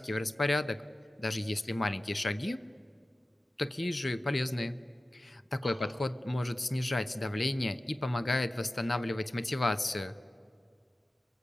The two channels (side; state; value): both; normal; correlation 0.96